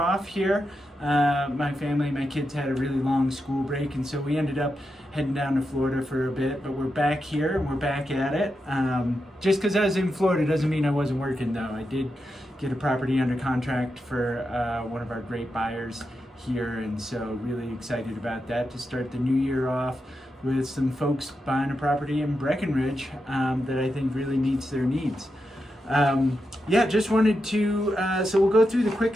here. My family, my kids had a really long school break, and so we ended up heading down to Florida for a bit, but we're back here and we're back at it. Just because I was in Florida doesn't mean I wasn't working though. I did get a property under contract for one of our great buyers here, and so really excited about that to start the new year off with some folks buying a property in Breckenridge that I think really meets their needs. Just wanted to, so we'll go through the quick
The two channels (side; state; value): both; normal; correlation 0.87